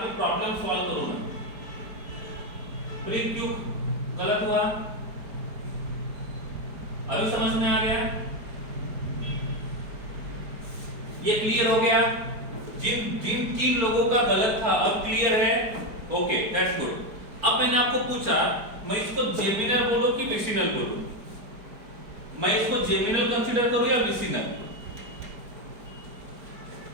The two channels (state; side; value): late; left; 4.7 ms